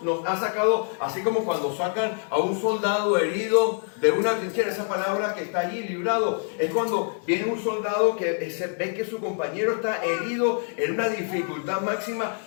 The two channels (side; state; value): right; silent; 61 dB below the other